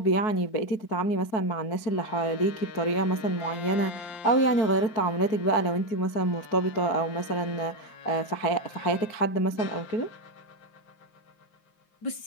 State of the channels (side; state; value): right; late; 4.6 ms